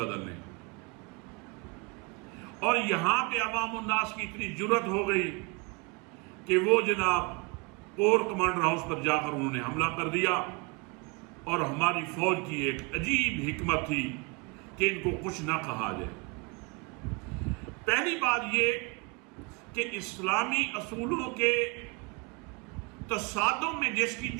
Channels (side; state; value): left; quieter; 29.5 dB